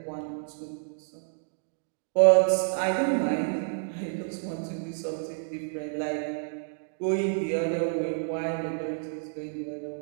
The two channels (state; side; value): silent; left; digital silence